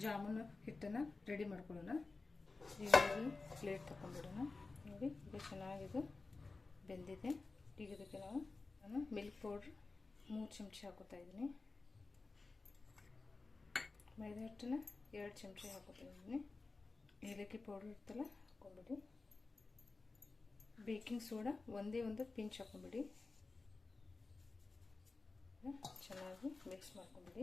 ಜಾಮೂನು ಹಿಟ್ಟನ್ನು ರೆಡಿ ಮಾಡ್ಕೊಳ್ಳೋಣ. ಈಗ ಪ್ಲೇಟ್ ತಗೊಂಡ್ಬಿಡೋಣ. ನೋಡಿ, ಇದು ಚೆನ್ನಾಗಿದು ಬೆಂದಿದೆ. ಈಗ ಇದಕ್ಕೆ ನಾನು ಮಿಲ್ಕ್ ಪೌಡ್ರ್ 3 ಚಮಚ ಹಾಕೋತಾ ಇದ್ದೀನಿ. ಮೈದಾ ಹಿಟ್ಟನ್ನು 2 ಚಮಚ ಹಾಕೋತಾ ಇದ್ದೀನಿ. ಏಲಕ್ಕಿ ಪೌಡ್ರ್ ಇರ್ತಲ್ಲ, ಹಾಕೊಂಡ್ಬಿಡಿ. ಬೇಕಿಂಗ್ ಸೋಡಾ ಒಂದು ಪಿಂಚ್ ಹಾಕೊಂಡ್ಬಿಡಿ. ಚೆನ್ನಾಗಿ ಮಿಕ್ಸ್ ಮಾಡ್ಕೊಂಡ್ಬಿಡಿ.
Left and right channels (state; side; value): quieter; right; 3.8 dB